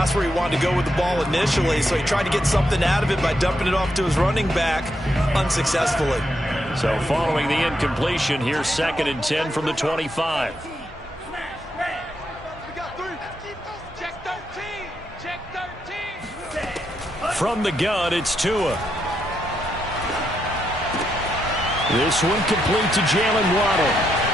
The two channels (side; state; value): both; normal; correlation 0.80